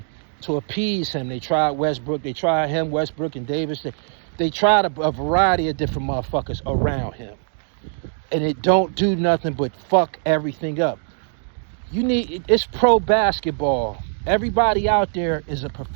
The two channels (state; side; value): silent; left; 64 dB below the other